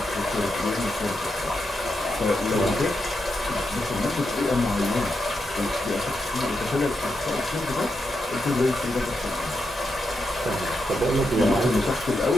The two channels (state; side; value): normal; both; correlation 0.84